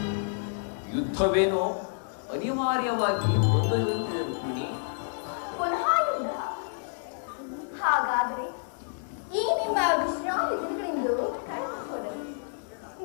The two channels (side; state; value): right; silent; digital silence